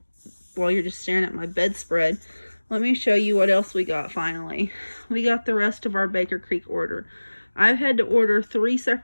while you're just staring at my bedspread, let me show you what else we got finally. We got the rest of our Baker Creek order. I've had to order 3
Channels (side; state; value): both; inverted; correlation -1.00